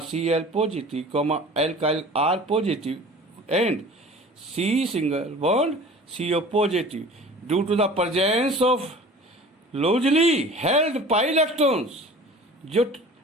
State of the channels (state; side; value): normal; both; correlation 0.43